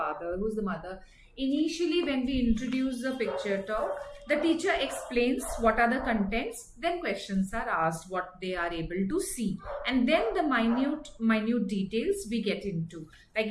who is the mother. Initially when we introduce the picture talk, the teacher explains what are the contents, then questions are asked what they are able to see, and then the minute details we get into. Like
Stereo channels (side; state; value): both; identical; correlation 1.00